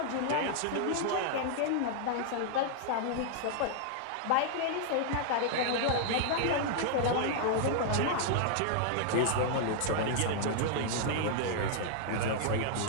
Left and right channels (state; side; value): different; both; correlation -0.01